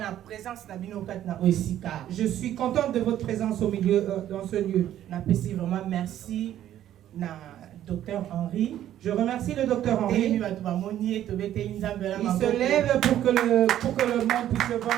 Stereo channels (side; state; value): left; quieter; 11.8 dB